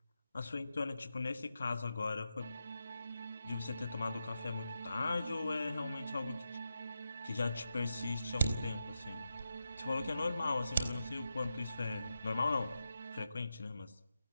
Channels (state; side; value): inverted; both; correlation -0.88